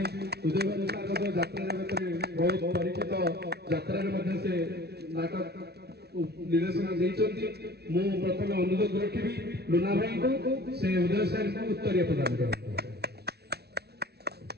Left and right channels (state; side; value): late; left; 0.48 ms